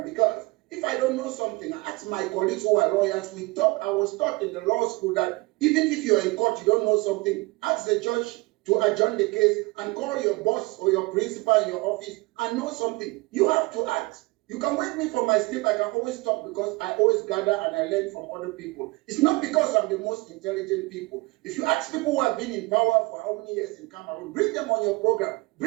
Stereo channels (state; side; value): quieter; left; 24.4 dB